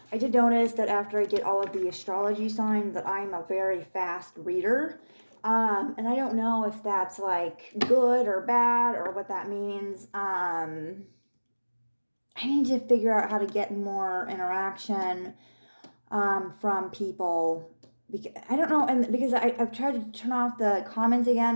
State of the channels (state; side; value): inverted; both; correlation -1.00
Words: I did notice that after I did all of the astrology signs that I'm a very fast reader. And I don't know if that's like good or bad or what that means. I need to figure out how to get more interaction from people. I don't know, and because I've tried to turn off the comments